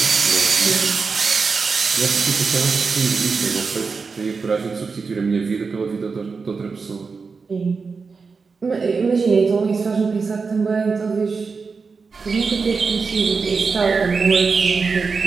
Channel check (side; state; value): left; quieter; 4.9 dB